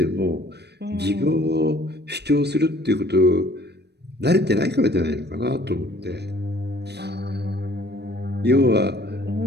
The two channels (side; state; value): left; late; 0.49 ms